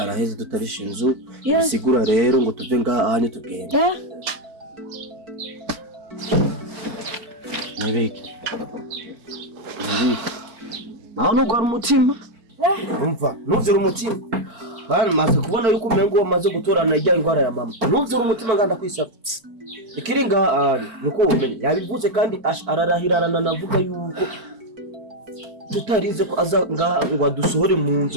araheze tutarisha inzu bisigura rero ngo tuve ngaha ahanye tugende nibiki naho nugwara umutima umva nuzira umutima bana maze kubona yuko umengo wamaze gutorana ijya ingwara ya mama nuzira umutima nganda kwisaba ikiringa ari nuko umenye yabivuze kandi ararahirana navuga yuko tutarize ko aza ngaha ngo adusohore mu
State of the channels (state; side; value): late; left; 4.5 ms